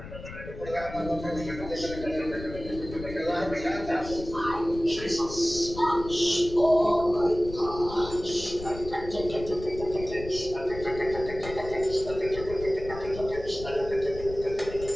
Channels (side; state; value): left; noise; rumble, 12 dB below the sound